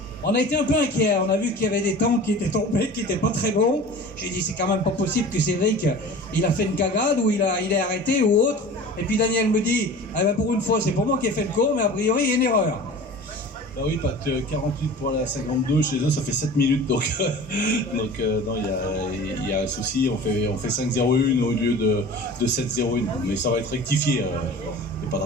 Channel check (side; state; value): both; normal; correlation 0.39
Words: on a été un peu inquiets, on a vu qu'il y avait des temps qui étaient tombés, qui n'étaient pas très bons. J'ai dit c'est quand même pas possible que Cédric, il a fait une cagade ou il est arrêté ou autre. Et puis Daniel me dit, eh ben pour une fois c'est pour moi qui ai fait le cours, mais a priori il y a une erreur. Bah oui, pas que 48 pour la 52, chez eux ça fait 7 minutes, donc non, il y a un souci, on fait 5-0-1 au lieu de 7-0-1, mais ça va être rectifié, il n'y a pas de